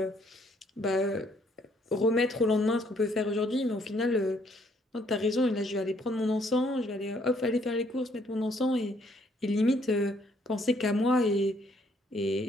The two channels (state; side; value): normal; both; correlation 0.67